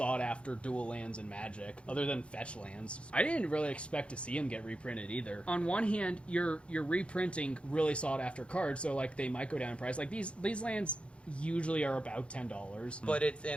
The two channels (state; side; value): late; right; 0.059 ms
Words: dual lands in Magic, other than fetch lands. I didn't really expect to see them get reprinted either. On one hand, you're reprinting really sought-after cards, so like they might go down in price. Like these lands usually are about $10. But it's